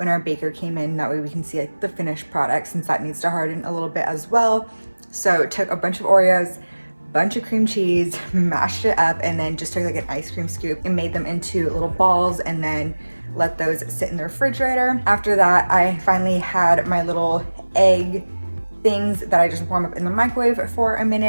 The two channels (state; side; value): inverted; both; correlation -1.00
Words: our baker came in. That way we can see like the finished product since that needs to harden a little bit as well. So took a bunch of Oreos, bunch of cream cheese, mashed it up, and then just took like an ice cream scoop and made them into little balls and then let those sit in the refrigerator. After that, I finally had my little egg things that I just warm up in the microwave for a